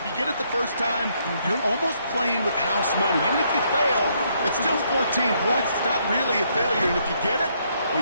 you get it the first time, you're almost playing with house money. Even if you fail, it's still 14 points. It's not really a failure. And if you get it, well,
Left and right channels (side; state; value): both; inverted; correlation -0.72